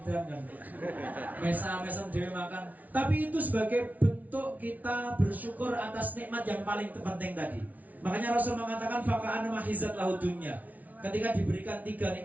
kan. Mesem dhewe makan. Tapi itu sebagai bentuk kita bersyukur atas nikmat yang paling penting tadi. Makanya Rasul mengatakan faka'ana mahizat lahu dunya. Ketika diberikan 3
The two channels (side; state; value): left; late; 0.074 ms